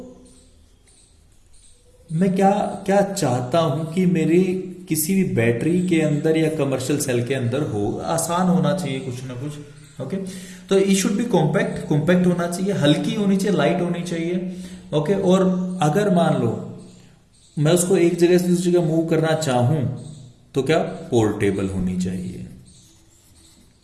मैं क्या क्या चाहता हूं कि मेरी किसी भी बैटरी के अंदर या कमर्शियल सेल के अंदर हो, आसान होना चाहिए कुछ ना कुछ। ओके, तो ई शुड बी कॉम्पैक्ट, कॉम्पैक्ट होना चाहिए, हल्की होनी चाहिए, लाइट होनी चाहिए। ओके, और अगर मान लो मैं उसको एक जगह से दूसरी जगह मूव करना चाहूं तो क्या, पोर्टेबल होनी चाहिए।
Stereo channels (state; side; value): identical; both; correlation 1.00